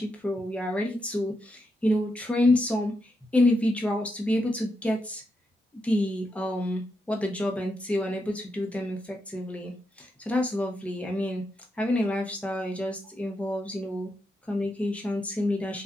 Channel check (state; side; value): normal; both; correlation 0.83